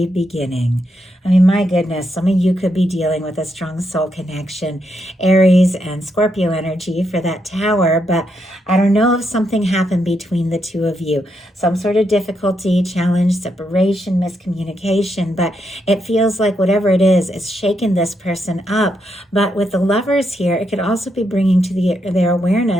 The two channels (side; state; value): both; normal; correlation 0.80